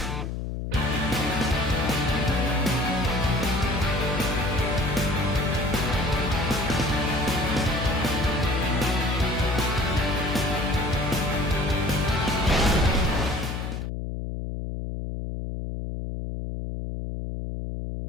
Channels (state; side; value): noise; left; hum, 4 dB below the sound